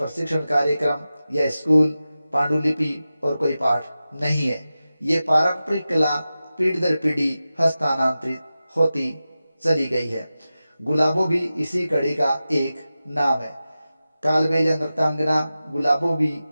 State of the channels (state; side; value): inverted; both; correlation -0.94